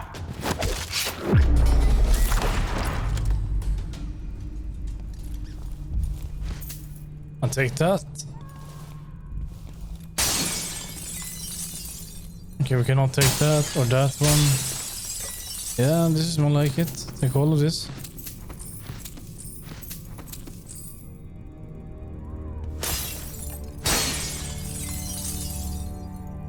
I'll take that. Okay, we cannot take that or that one. Yeah, this is more like it. Take all of this.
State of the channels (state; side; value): identical; both; correlation 1.00